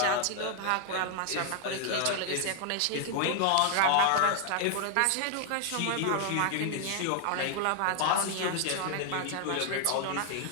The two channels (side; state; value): both; different; correlation 0.00